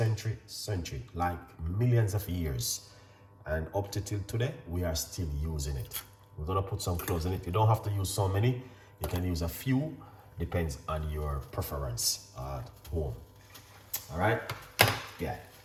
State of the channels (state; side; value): identical; both; correlation 1.00